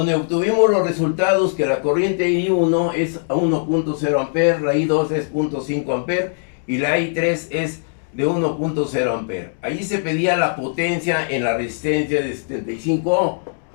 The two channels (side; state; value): right; silent; digital silence